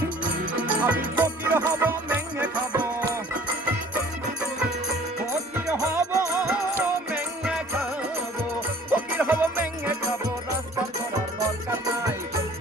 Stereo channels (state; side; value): normal; both; correlation 0.50